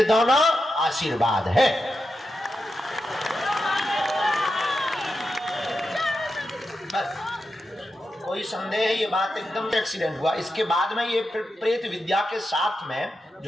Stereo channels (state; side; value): normal; both; correlation 0.88